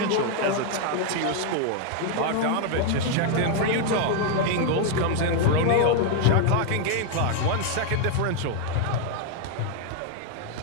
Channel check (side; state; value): both; different; correlation 0.00